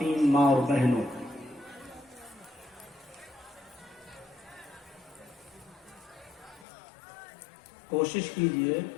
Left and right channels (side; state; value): right; drops out; at 6.7 s